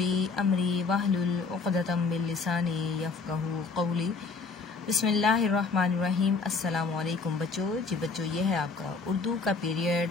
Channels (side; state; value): right; quieter; 4.5 dB